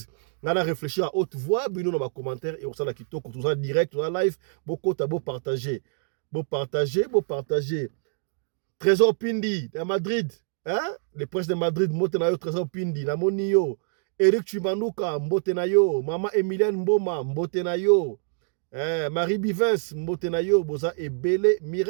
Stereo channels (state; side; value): silent; left; digital silence